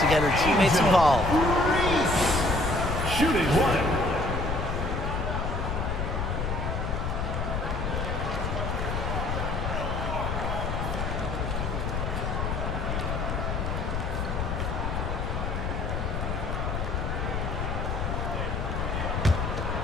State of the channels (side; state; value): left; noise; rumble, 1 dB below the sound